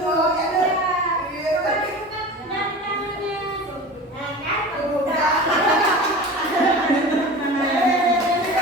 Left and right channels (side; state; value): both; normal; correlation 0.34